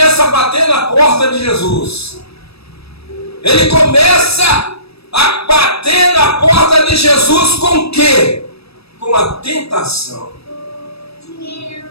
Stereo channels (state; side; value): late; right; 0.78 ms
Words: a bater na porta de Jesus. Ele começa a bater na porta de Jesus com o quê? Com a tentação.